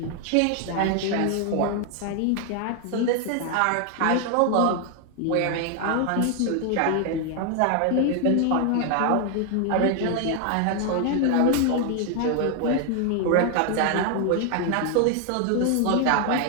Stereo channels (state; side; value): different; both; correlation 0.01